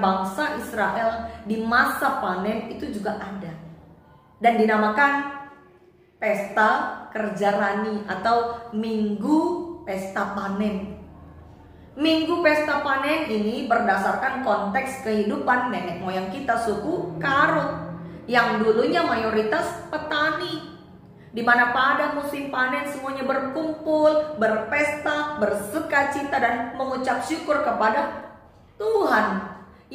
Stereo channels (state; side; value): identical; both; correlation 1.00